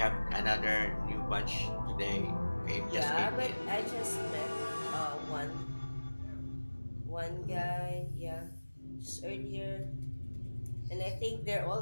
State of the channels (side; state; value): both; inverted; correlation -1.00